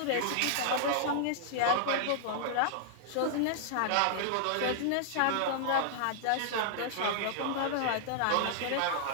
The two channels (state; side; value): different; both; correlation -0.01